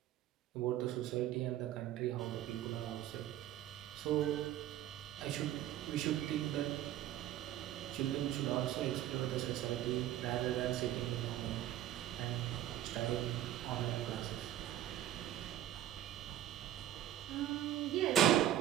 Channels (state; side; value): quieter; left; 12.2 dB